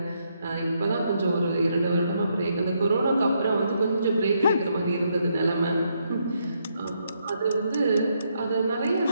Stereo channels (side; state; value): both; inverted; correlation -0.77